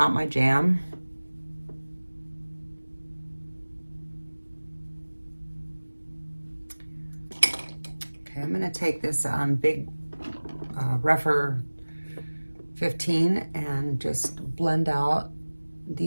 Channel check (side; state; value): both; inverted; correlation -1.00